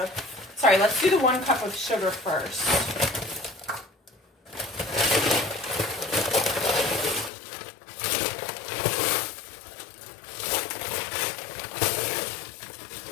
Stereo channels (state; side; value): drops out; right; at 7.3 s